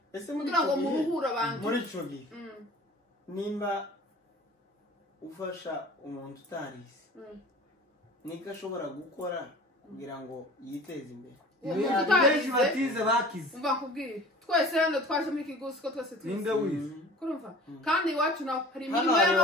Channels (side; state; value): both; normal; correlation 0.43